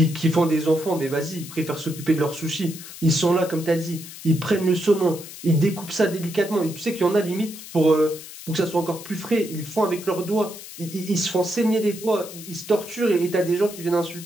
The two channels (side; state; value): left; noise; hiss, 14 dB below the sound